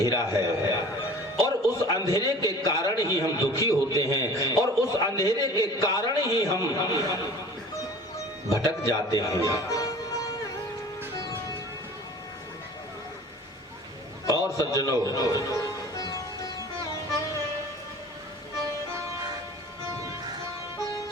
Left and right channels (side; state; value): both; normal; correlation 0.44